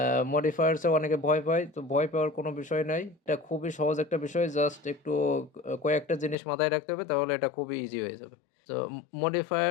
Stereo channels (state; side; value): drops out; right; at 6.4 s